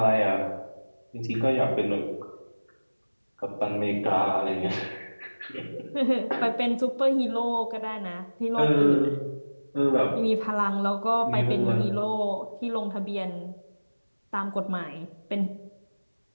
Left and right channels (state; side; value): inverted; both; correlation -1.00